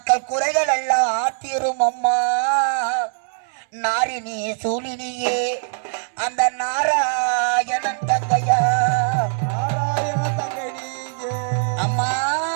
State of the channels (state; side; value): silent; left; 65 dB below the other